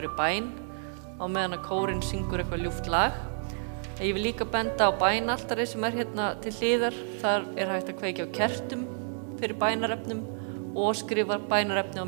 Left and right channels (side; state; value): left; silent; digital silence